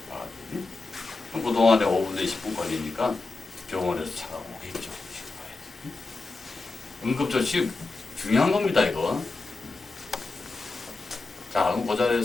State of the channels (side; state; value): right; quieter; 3.6 dB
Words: 그럼 그동안에 5분 내 10분 걸리니까 병원에서 차가 오겠죠. 응급조치 중요한 겁니다, 이거. 자, 그럼 그